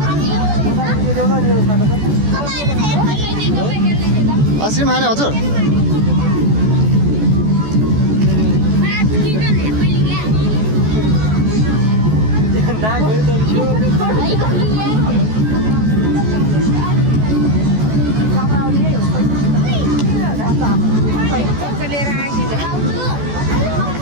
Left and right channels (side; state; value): left; late; 14 ms